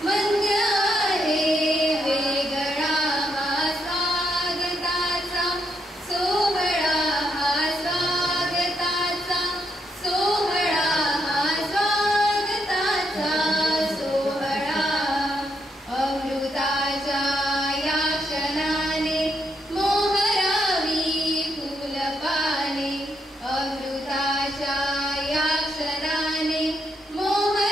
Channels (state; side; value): normal; both; correlation 0.78